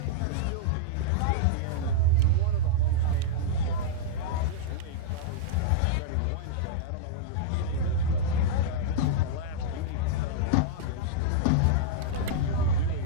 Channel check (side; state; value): both; different; correlation -0.02